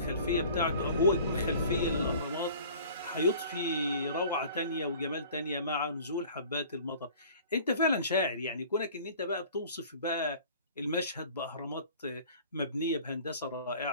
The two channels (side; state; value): both; inverted; correlation -0.47